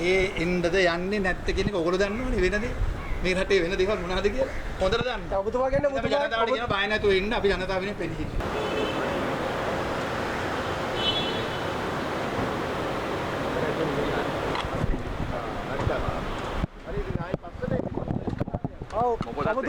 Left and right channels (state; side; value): identical; both; correlation 1.00